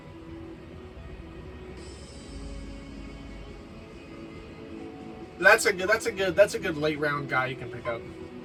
That's a good late round guy you can pick up.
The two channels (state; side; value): identical; both; correlation 1.00